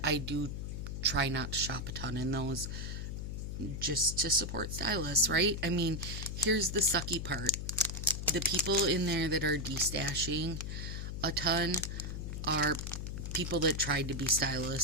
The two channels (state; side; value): noise; left; hum, 5 dB below the sound